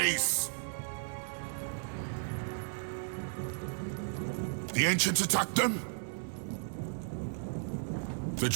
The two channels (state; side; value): silent; left; digital silence